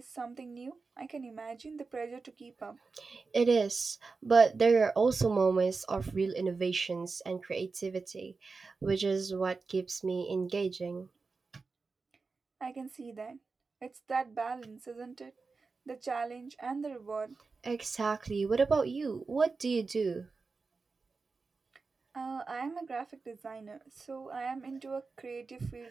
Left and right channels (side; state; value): left; quieter; 4.3 dB